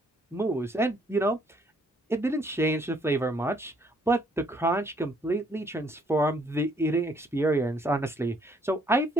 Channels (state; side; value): normal; both; correlation 0.66